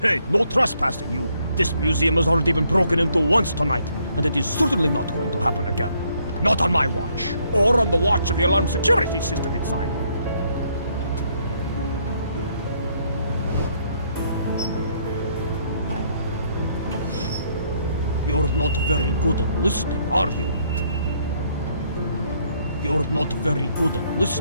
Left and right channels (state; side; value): inverted; both; correlation -0.69